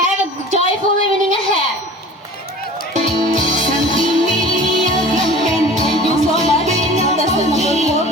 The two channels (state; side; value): normal; both; correlation 0.41